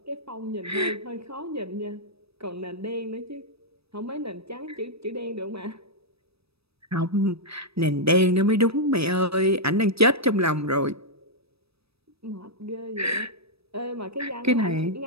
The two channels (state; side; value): late; left; 0.78 ms